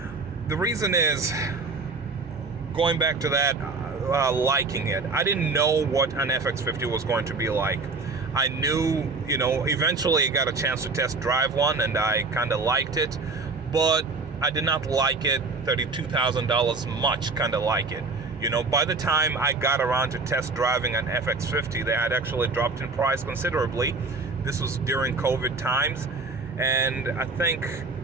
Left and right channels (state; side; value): quieter; left; 3.9 dB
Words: The reason is, going back to that, liking it. I didn't know what an FX50 was going to be like. I knew, eventually I got a chance to test drive one and I kind of liked it, but I did not like it. $32,000 much kind of like it. By the time I got around to test driving an FX50, they had actually dropped in price considerably. This was during COVID times, and I think